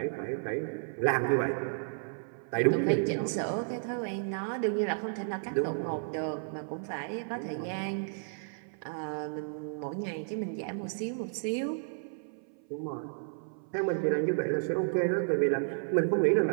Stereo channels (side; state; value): left; silent; 56 dB below the other